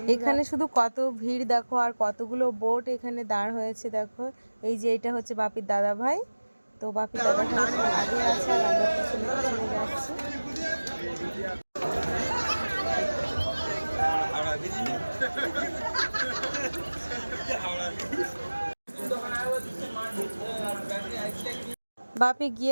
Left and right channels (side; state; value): both; inverted; correlation -1.00